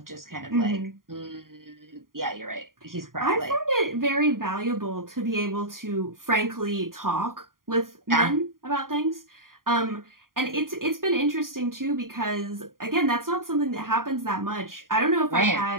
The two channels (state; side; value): late; left; 0.91 ms